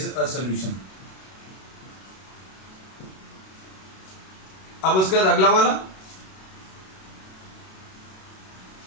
a solution. अब उसके बाद अगला वाला,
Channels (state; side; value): late; right; 32 ms